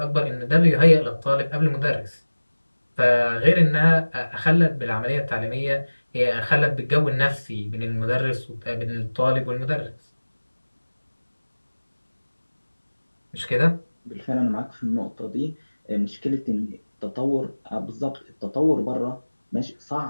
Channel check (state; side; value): inverted; both; correlation -1.00